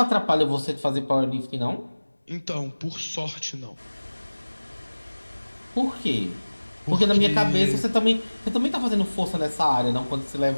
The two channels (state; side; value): inverted; both; correlation -1.00